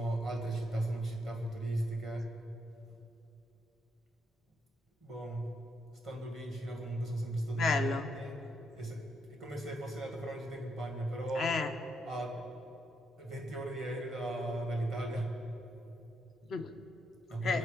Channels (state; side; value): normal; both; correlation 0.78